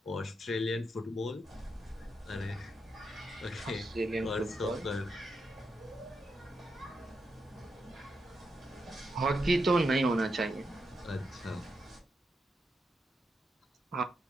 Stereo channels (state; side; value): normal; both; correlation 0.84